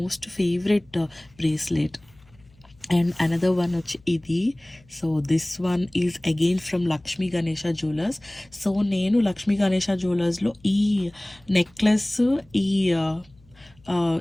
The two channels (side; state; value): left; noise; hum, 29 dB below the sound